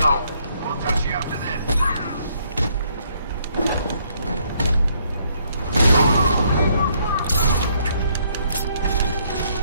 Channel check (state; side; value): inverted; both; correlation -0.69